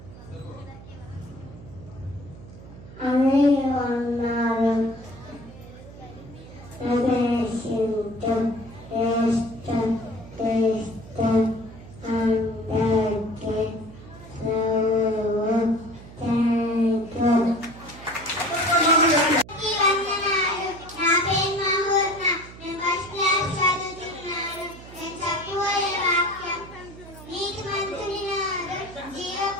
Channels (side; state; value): right; noise; hum, 17 dB below the sound